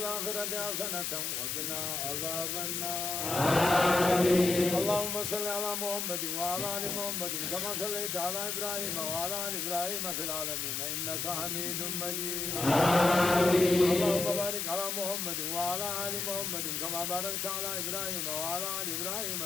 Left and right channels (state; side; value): noise; left; hiss, 2 dB below the sound